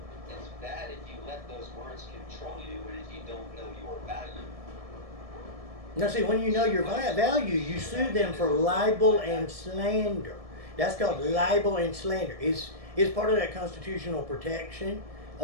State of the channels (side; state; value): left; late; 1.7 ms